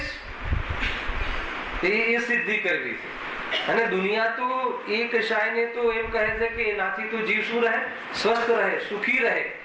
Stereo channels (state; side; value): identical; both; correlation 1.00